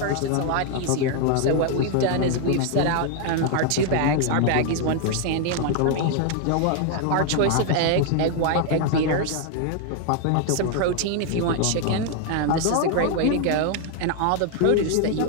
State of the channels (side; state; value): both; different; correlation 0.00